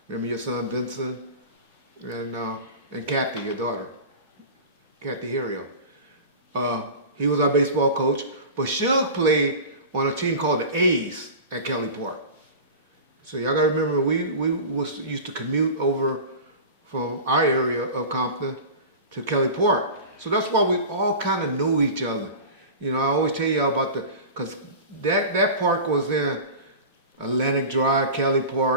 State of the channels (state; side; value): inverted; both; correlation -0.32